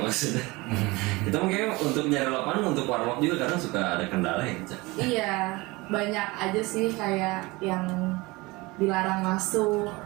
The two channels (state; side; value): quieter; left; 23.0 dB